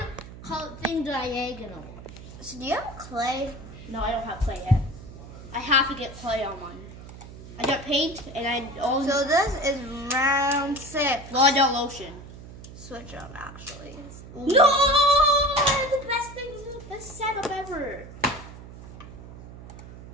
the thing diagonal? So do you have clay? No, I don't have clay yet. I have to get clay on mine. I got paint and I also. So this is round 6. Well, I got lotion. Switch up, actually. No! The best thing, the best setup ever.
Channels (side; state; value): right; noise; hum, 15 dB below the sound